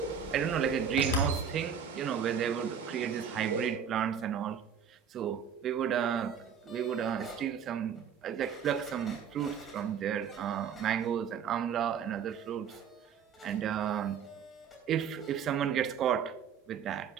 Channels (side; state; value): left; quieter; 7.5 dB